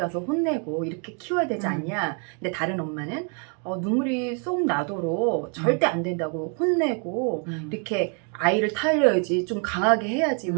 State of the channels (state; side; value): quieter; left; 39.6 dB